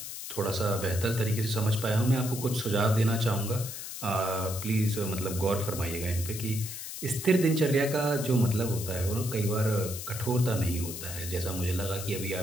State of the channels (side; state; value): left; noise; hiss, 8 dB below the sound